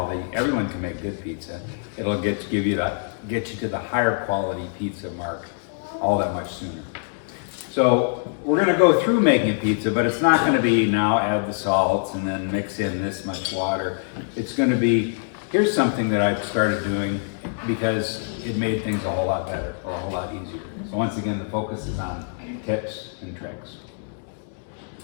Everyone can make good pizza. It'll get you to the higher quality pizza mark all that much sooner. So we're going to go through making a pizza, but it's not going to be now add the salts and then mix in this much water. It's going to be, here's something that I've started doing because it made things a whole lot better or a whole lot easier. So once again, the focus is on tips and tricks.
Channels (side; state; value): right; silent; 62 dB below the other